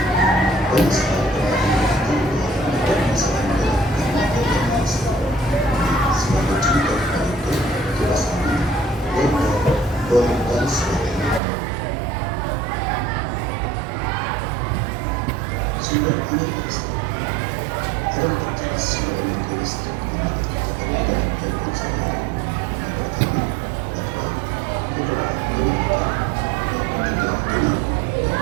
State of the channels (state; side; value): drops out; left; at 11.4 s